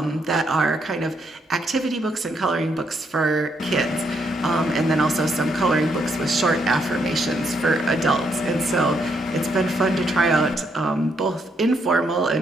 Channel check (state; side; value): normal; both; correlation 0.75